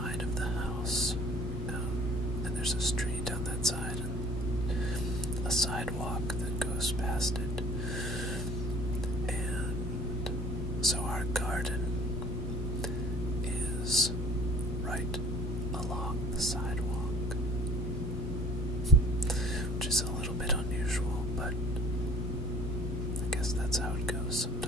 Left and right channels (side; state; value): both; normal; correlation 0.50